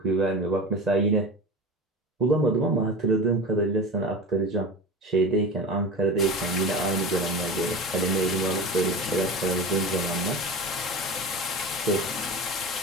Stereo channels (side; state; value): both; normal; correlation 0.30